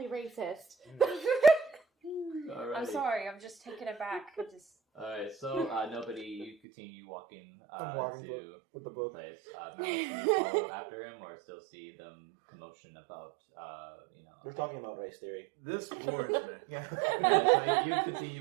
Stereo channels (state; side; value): drops out; left; at 6.6 s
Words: racist. Alrighty. I'm sorry, I'm just taking it back. Alright, so nobody, you continue walking I'm walking to with the book. place. Malice, do you follow after him or still see them commotion about, We're talking about race theory. This bores me. Yeah. so you